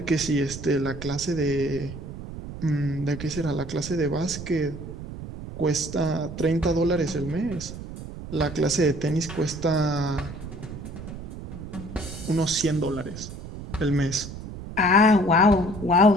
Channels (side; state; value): right; noise; rumble, 11 dB below the sound